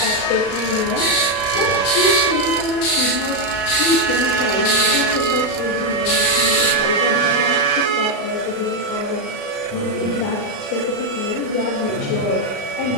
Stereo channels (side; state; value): right; late; 36 ms